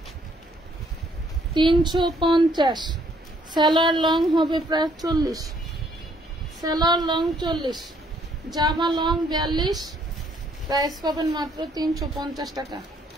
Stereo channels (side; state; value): both; normal; correlation 0.66